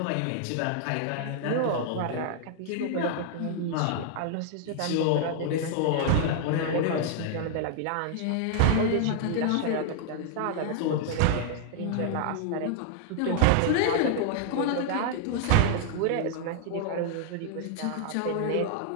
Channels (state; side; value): different; both; correlation -0.01